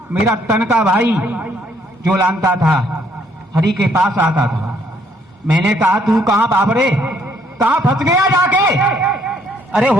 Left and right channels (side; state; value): both; normal; correlation 0.67